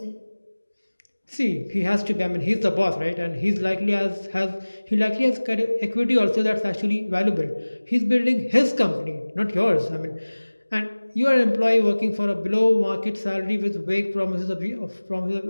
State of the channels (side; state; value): both; inverted; correlation -1.00